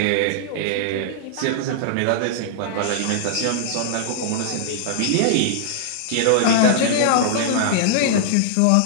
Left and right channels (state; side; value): different; both; correlation -0.01